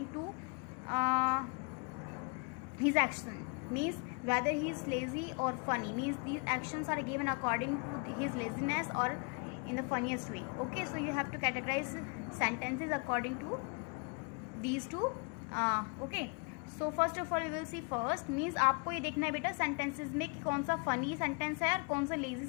to his action. Means whether he is lazy or funny. Means these actions are given according to his laziness or in the funniest way. Okay, so you have to categorize sentences according to these two. Okay, so first of all we will see first means आपको ये देखना है बेटा sentences में कि कौन सा funny sentence है और कौन सा लेजी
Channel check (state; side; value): quieter; right; 36.5 dB